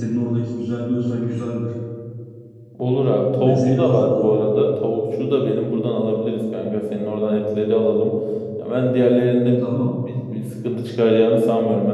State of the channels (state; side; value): identical; both; correlation 1.00